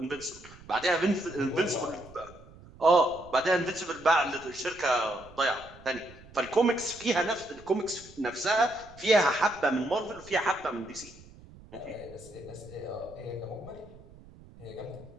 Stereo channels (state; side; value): noise; right; rumble, 21 dB below the sound